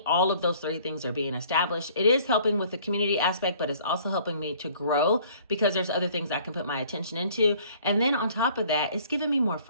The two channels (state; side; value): inverted; both; correlation -0.55